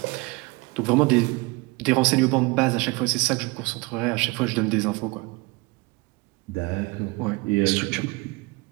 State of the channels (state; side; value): quieter; left; 25.3 dB